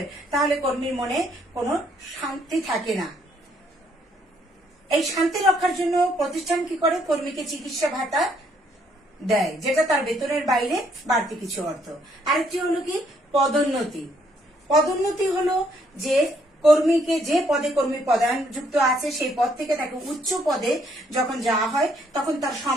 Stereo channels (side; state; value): both; normal; correlation 0.69